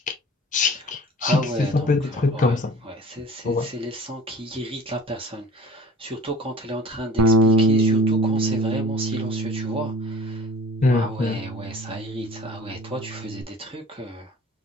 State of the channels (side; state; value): both; normal; correlation 0.44